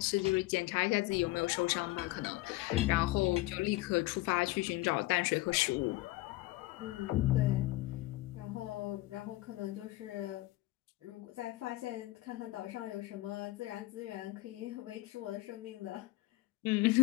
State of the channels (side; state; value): right; quieter; 19.1 dB